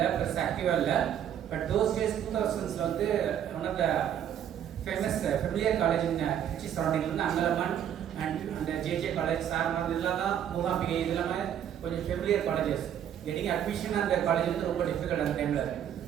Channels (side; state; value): left; quieter; 9.7 dB